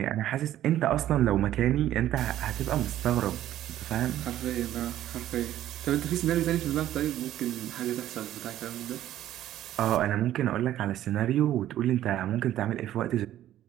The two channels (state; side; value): quieter; left; 12.7 dB